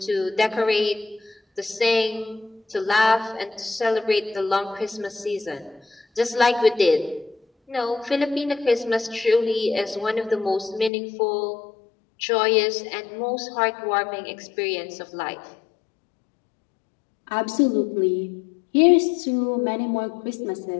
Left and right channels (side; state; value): right; drops out; at 10.9 s